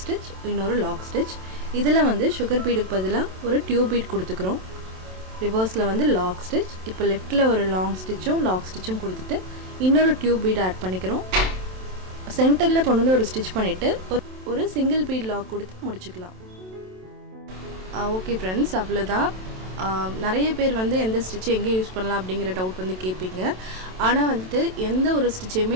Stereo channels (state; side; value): late; left; 27 ms